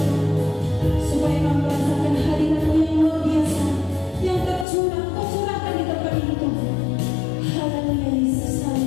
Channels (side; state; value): right; drops out; at 4.7 s